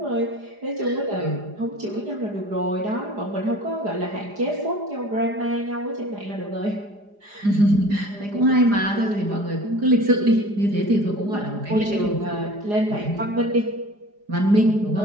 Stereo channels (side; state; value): left; late; 4.9 ms